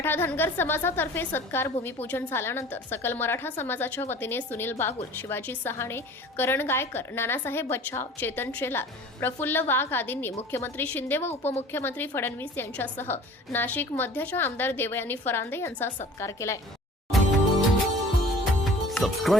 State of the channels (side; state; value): both; normal; correlation 0.45